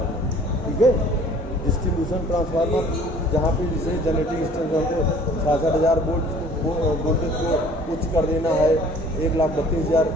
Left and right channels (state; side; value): normal; both; correlation 0.52